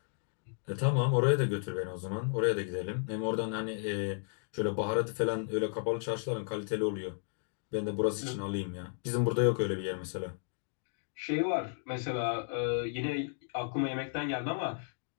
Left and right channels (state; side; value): silent; right; digital silence